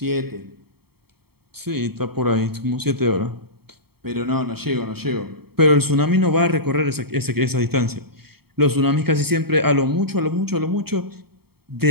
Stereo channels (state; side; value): late; left; 0.96 ms